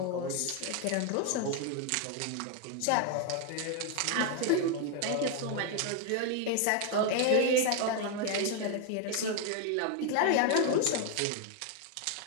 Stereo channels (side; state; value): both; different; correlation 0.01